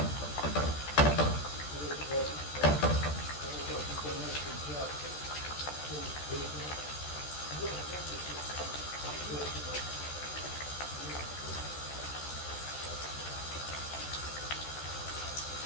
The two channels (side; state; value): right; late; 14 ms